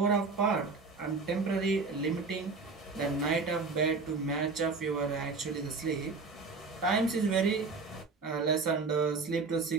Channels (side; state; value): left; quieter; 4.2 dB